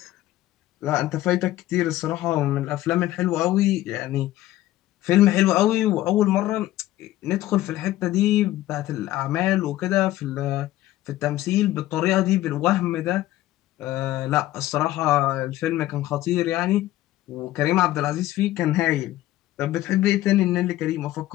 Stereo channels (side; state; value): right; quieter; 15.1 dB